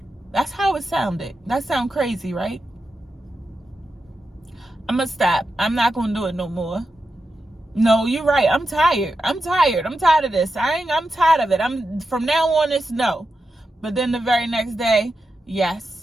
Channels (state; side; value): normal; both; correlation 0.89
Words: That's how it sounded. That sound crazy, right? I'm going to stop. I'm not going to do it no more. No, you're right. I'm tired. I'm tired of this. I'm tired of it. From now on, it's no. But then the very next day,